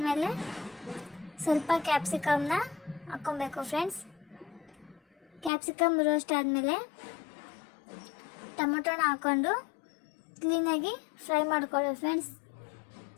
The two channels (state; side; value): drops out; right; at 5.5 s